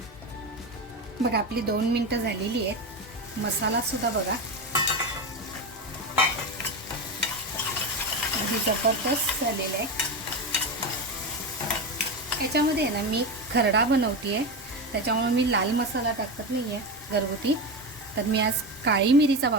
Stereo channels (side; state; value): both; normal; correlation 0.18